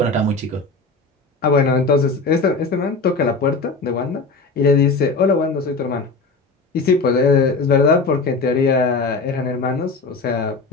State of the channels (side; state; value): right; quieter; 3.9 dB